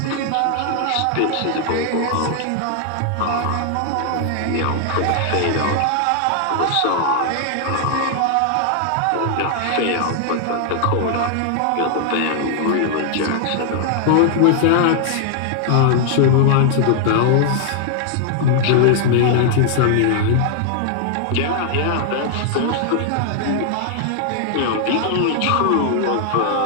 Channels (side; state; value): both; different; correlation 0.00